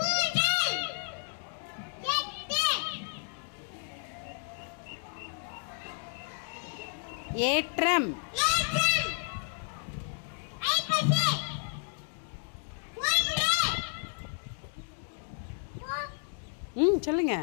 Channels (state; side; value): silent; right; 57 dB below the other